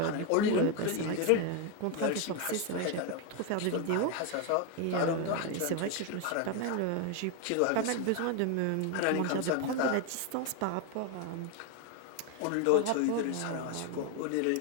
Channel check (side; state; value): both; different; correlation 0.01